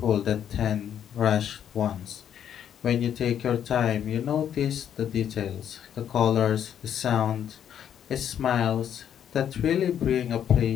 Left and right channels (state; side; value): quieter; right; 9.4 dB